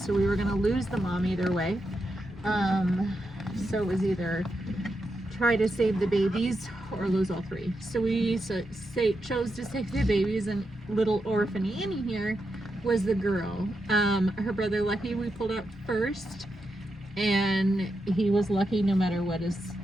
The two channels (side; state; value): both; normal; correlation 0.86